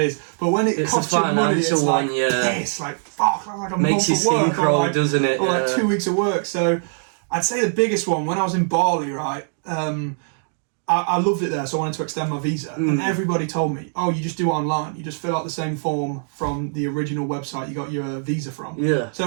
But when it costs you money, it's like, piss, like, fuck, like a makes you skin crawl, doesn't it? Or like 2 weeks of work. So I'd say the biggest one, when I was in Bali, right? I I loved it there, so I wanted to extend my visa. And everybody told me, oh, you just do it online. You just fill out the same form from the original website you got your visa from. Yeah.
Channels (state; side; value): silent; left; 61 dB below the other